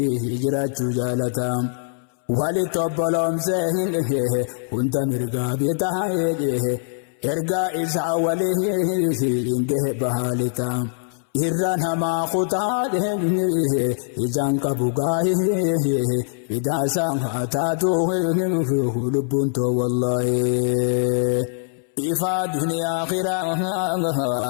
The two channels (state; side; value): silent; right; 64 dB below the other